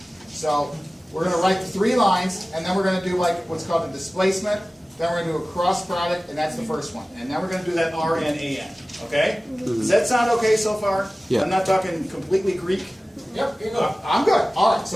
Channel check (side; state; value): both; normal; correlation 0.97